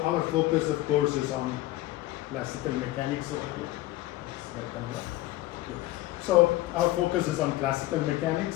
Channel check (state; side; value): quieter; right; 16.9 dB